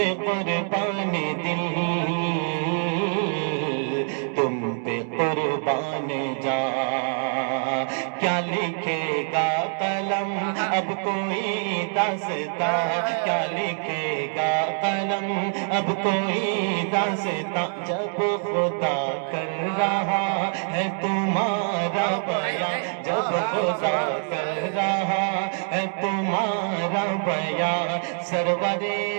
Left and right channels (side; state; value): left; silent; 62 dB below the other